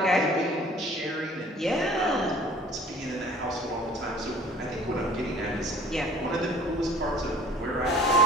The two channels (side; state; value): both; normal; correlation 0.50